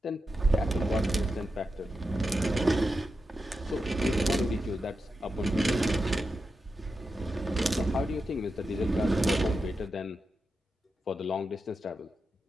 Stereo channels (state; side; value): normal; both; correlation 0.89